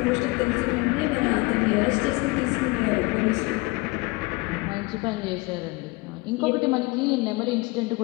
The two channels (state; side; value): quieter; right; 25.0 dB